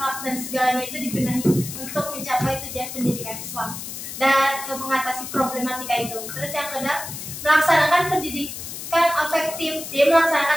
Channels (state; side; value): noise; left; hiss, 9 dB below the sound